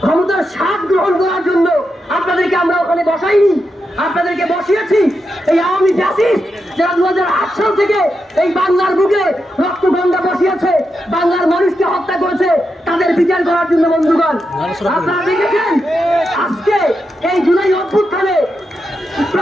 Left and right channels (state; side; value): normal; both; correlation 0.86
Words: ক্ষমতার স্বাদ গ্রহণ করার জন্য আপনাদেরকে আমরা ওখানে বসাইনি, আপনাদেরকে বসিয়েছি এই আওয়ামী ফ্যাসিস্ট যারা 2008 সাল থেকে এই বাংলার বুকে রক্ত গঙ্গা বসিয়েছে, বাংলার মানুষকে হত্যা করেছে, তাদের বিচার করার জন্য বন্ধুগণ। আপনারা দেখেছেন আজকে এই জুলাই অভ্যুত্থানে